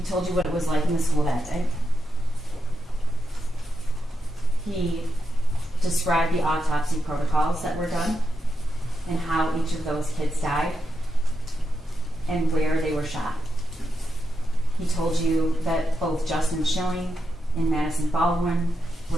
told you what it was like in the school that day. He described the autopsy protocols that were done and how each of those kids died and where they were shot. He told you that both Justin Schilling and Madison Baldwin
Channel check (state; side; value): normal; both; correlation 0.86